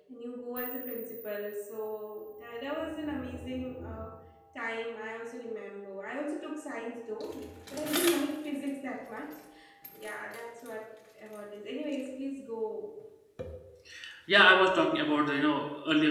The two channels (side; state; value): both; identical; correlation 1.00